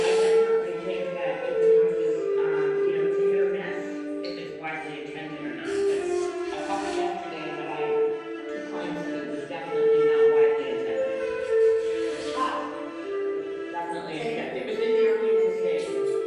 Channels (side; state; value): both; identical; correlation 1.00